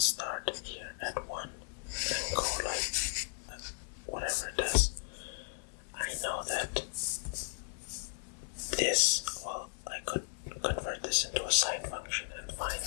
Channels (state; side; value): silent; right; digital silence